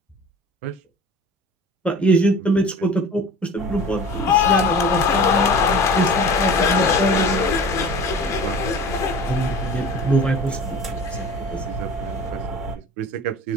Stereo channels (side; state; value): both; normal; correlation 0.40